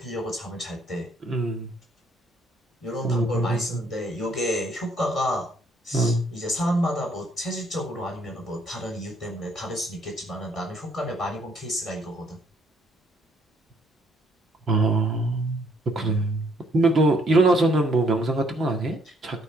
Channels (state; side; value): normal; both; correlation 0.67